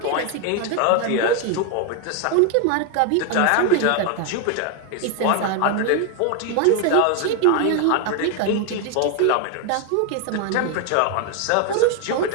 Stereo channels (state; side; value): different; both; correlation 0.01